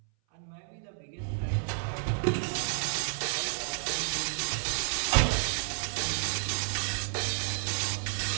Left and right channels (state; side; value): silent; left; 57 dB below the other